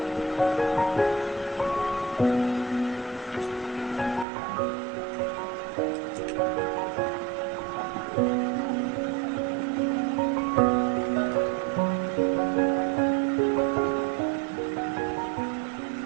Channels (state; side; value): drops out; left; at 4.2 s